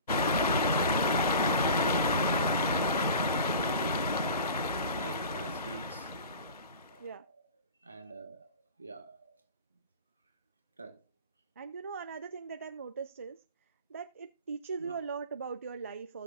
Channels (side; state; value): both; inverted; correlation -0.38